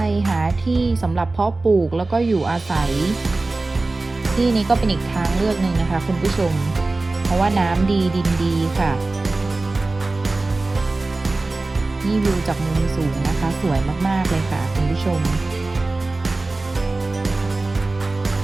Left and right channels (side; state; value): left; quieter; 3.2 dB